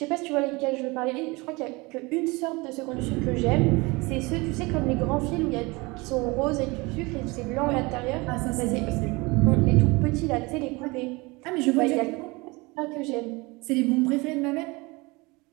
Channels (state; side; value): quieter; left; 24.8 dB